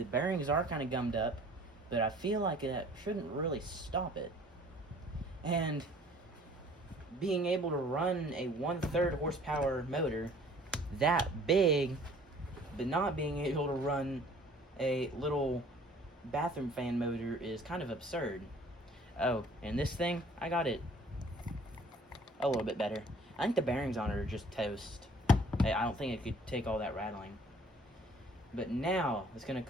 bearings are kind of gummed up, but I feel like that shouldn't really stop it. And being able to run a 1/3 horsepower motor that big, but not being able to run a little bathroom fan motor is kind of absurd. Oh, and this thing, I got it a little bit better. I think the bearings on it are just toast. I don't think it could take all that rattling. But now, it's going to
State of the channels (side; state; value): both; normal; correlation 0.53